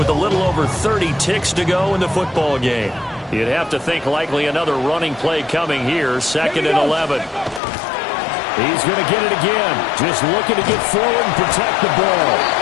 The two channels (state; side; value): drops out; right; at 7.6 s